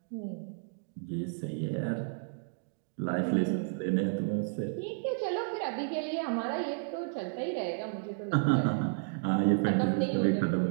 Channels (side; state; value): left; silent; digital silence